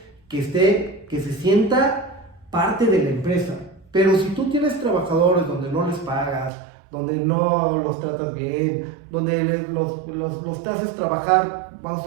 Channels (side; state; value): left; drops out; at 6.5 s